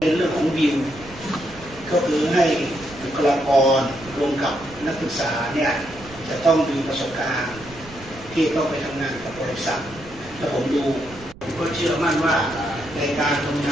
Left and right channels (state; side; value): noise; right; rumble, 19 dB below the sound